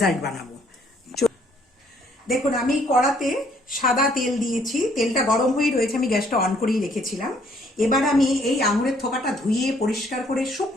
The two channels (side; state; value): both; normal; correlation 0.65